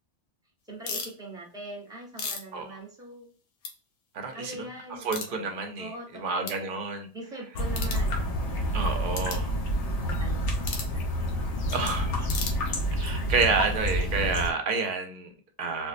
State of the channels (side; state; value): right; late; 1.7 ms